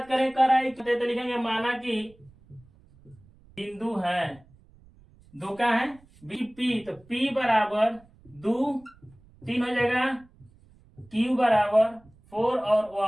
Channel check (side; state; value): right; noise; rumble, 27 dB below the sound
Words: करें? कर रहे तो लिखेंगे माना कि बिंदु है दो का है बी पी, तो पी बराबर 2 3 हो जाएगा, क्यू बराबर 4 और